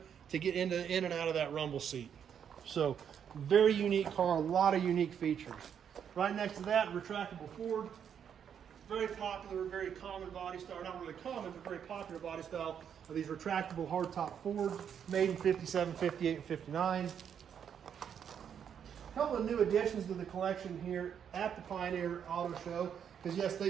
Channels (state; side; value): quieter; left; 8.2 dB